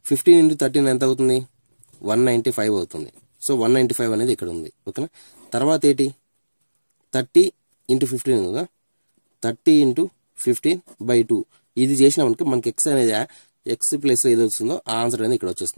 15 into 13 ఎంత అవుతుంది 195 అవుతుంది. సో 195 అనేది ఇక్కడ ఉంది. ఓకేనా, తర్వాత ఏంటి 30 into 15 కదా, 30 into 15 by 2. ఇది చేసినామనుకో మనకి ఎక్స్ అనేది ఎక్స్ ప్లేస్లో ఏది వస్తుందో ఆ ఆన్సర్ అనేది ఇక్కడ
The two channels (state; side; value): inverted; both; correlation -1.00